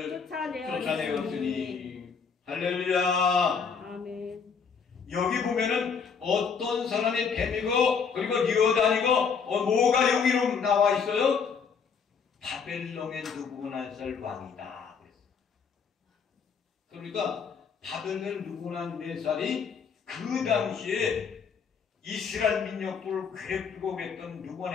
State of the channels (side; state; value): right; quieter; 6.1 dB